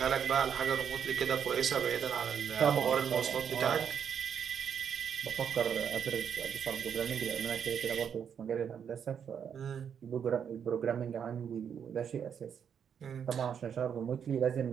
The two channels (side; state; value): left; quieter; 7.8 dB